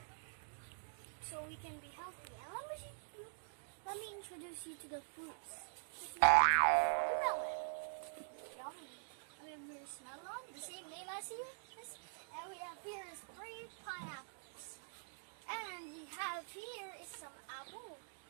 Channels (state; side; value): silent; left; digital silence